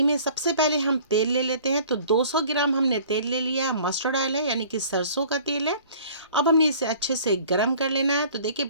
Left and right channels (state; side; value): inverted; both; correlation -0.50